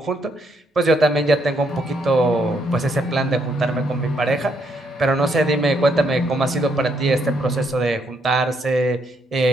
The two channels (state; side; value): normal; both; correlation 0.74